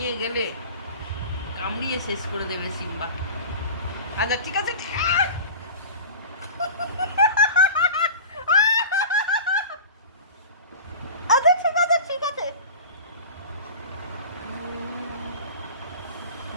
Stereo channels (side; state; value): both; inverted; correlation -0.36